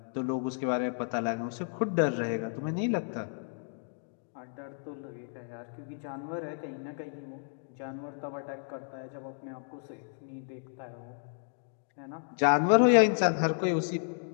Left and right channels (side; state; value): right; silent; digital silence